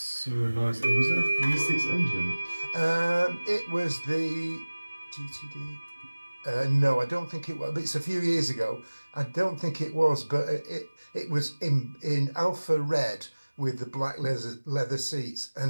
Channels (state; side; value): inverted; both; correlation -1.00